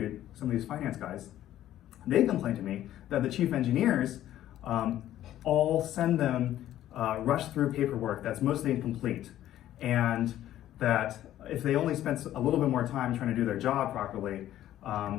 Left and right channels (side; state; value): right; quieter; 12.8 dB